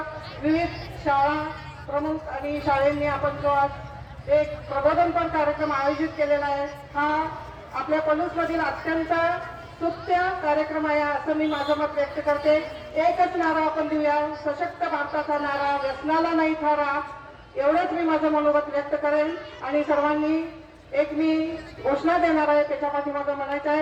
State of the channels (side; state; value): both; identical; correlation 1.00